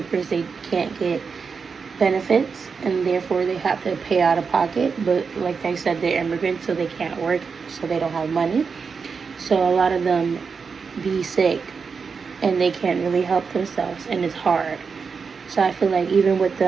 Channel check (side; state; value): left; quieter; 5.4 dB